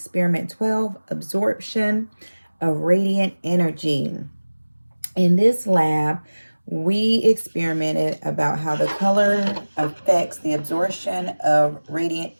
12, absorption of radiant energy. In this lab, we experimented about how the color affects the absorption of radiant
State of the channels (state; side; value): inverted; both; correlation -1.00